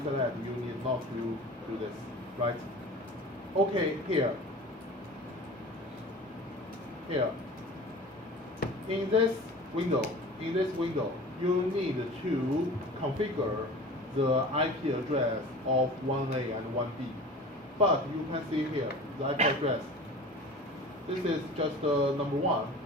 you need not to do this, right? Okay, here. In this window, you need to configure the IP address of 1A and 1B. But you can see here the IP address. This is just number 1,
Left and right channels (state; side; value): normal; both; correlation 0.39